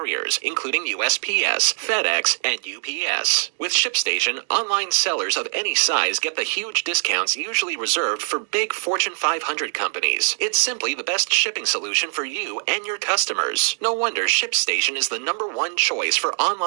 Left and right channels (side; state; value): left; silent; 64 dB below the other